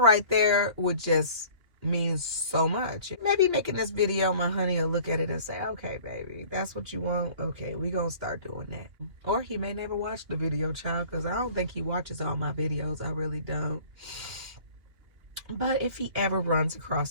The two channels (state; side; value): late; left; 2.7 ms